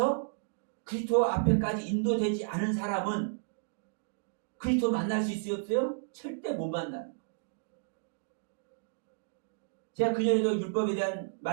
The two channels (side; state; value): left; silent; digital silence